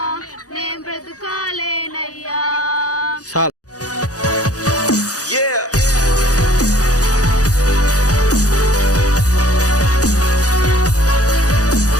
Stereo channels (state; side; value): late; right; 0.67 ms